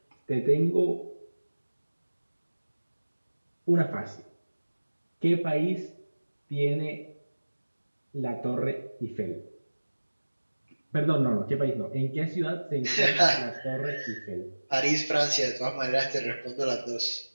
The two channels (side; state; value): both; inverted; correlation -1.00